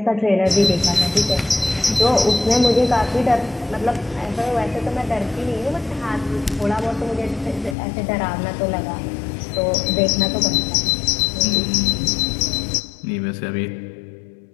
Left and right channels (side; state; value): right; drops out; at 7.8 s